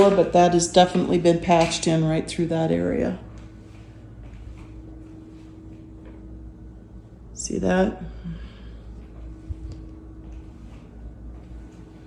but that has definitely been patched in right through that area. See that?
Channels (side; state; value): both; identical; correlation 1.00